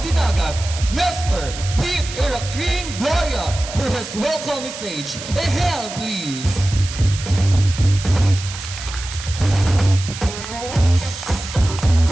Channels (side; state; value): right; noise; hiss, 10 dB below the sound